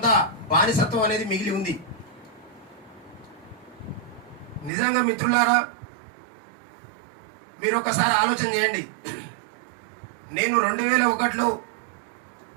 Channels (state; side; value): drops out; left; at 4.7 s